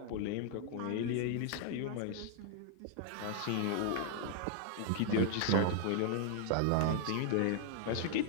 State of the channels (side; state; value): both; different; correlation -0.01